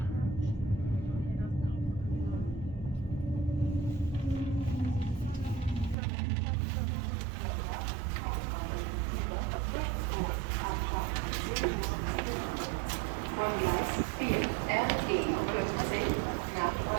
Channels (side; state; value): left; drops out; at 6.0 s